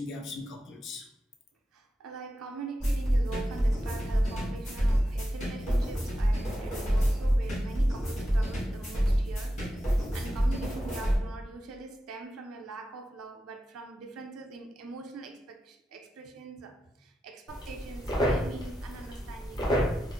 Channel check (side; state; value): both; normal; correlation 0.90